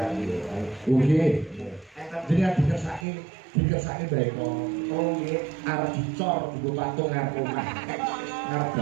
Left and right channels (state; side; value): drops out; left; at 3.1 s